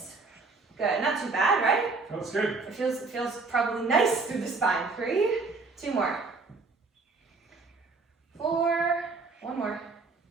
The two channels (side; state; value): left; quieter; 4.0 dB